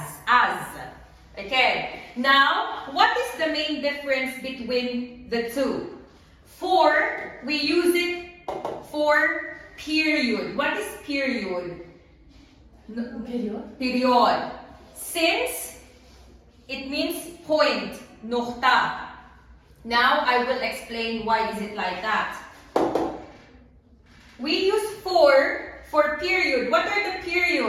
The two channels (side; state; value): both; identical; correlation 1.00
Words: Okay, now what is the main difference between the two? For, we use it for period. What is period? Period. Since, it means point, nukta. Now I will explain why is it like that. We use for period. What are the